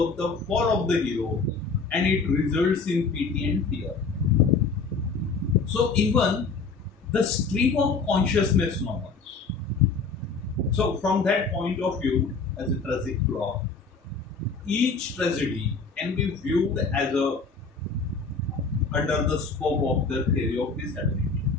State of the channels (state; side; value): quieter; right; 4.5 dB